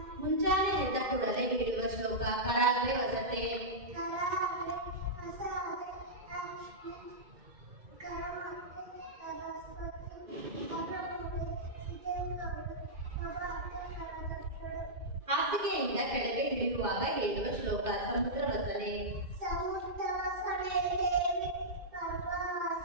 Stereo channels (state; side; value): late; left; 2.1 ms